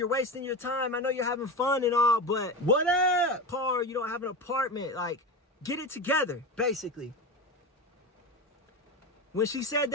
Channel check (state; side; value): normal; both; correlation 0.23